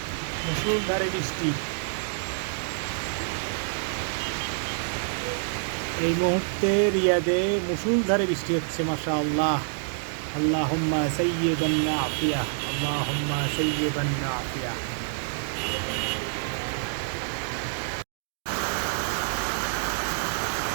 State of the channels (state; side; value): silent; left; digital silence